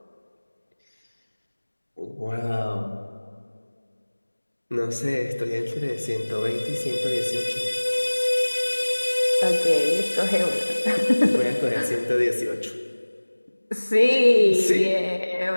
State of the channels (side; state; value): both; inverted; correlation -1.00